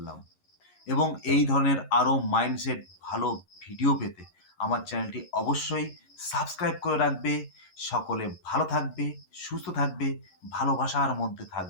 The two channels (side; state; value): right; late; 11 ms